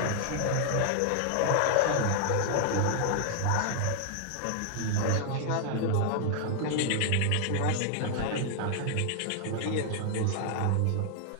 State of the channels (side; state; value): both; different; correlation 0.00